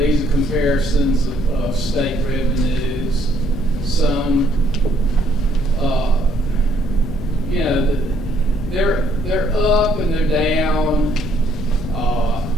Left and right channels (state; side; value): normal; both; correlation 0.67